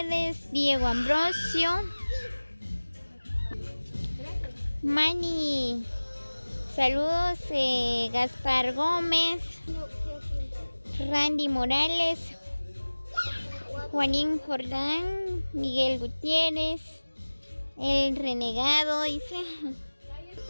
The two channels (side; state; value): both; inverted; correlation -1.00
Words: Diego Ambrosio, Mani, saludos, Gaspar Gómez, Randy Morales, Juanín Jordán, Miguel Gutiérrez, El Renegado, dice